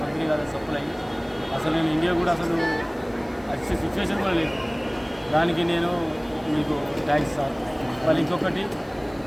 కాదు సప్లై అసలు నేను ఇండియా కూడా అసలు వచ్చే సిచ్యువేషన్ కూడా లేదు. దానికి నేను మీకు థ్యాంక్స్ సార్. మళ్ళీ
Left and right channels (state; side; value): noise; left; hiss, 29 dB below the sound